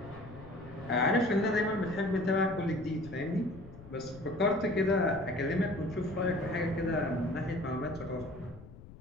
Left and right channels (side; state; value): left; noise; rumble, 18 dB below the sound